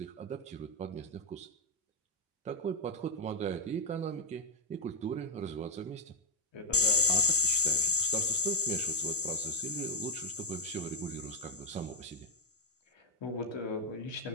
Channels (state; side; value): normal; both; correlation 0.01